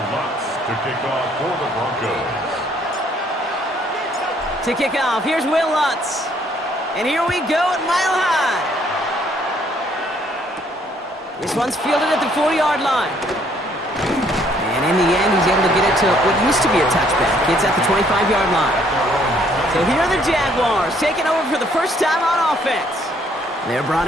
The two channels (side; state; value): both; normal; correlation 0.65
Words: Lutz to kick off for the Broncos. To kick off, here's Will Lutz. And here we go at Mile High. This one's fielded at the 4-yard line. And in the end, he's able to get it to what used to be a touchback. It's at the 25-yard line. So here are the Jaguars taking over for the first time on offense. They're brought